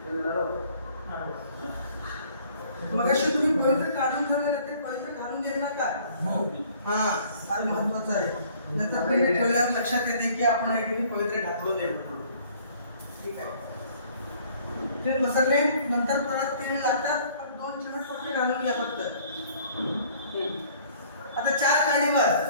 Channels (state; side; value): inverted; both; correlation -0.57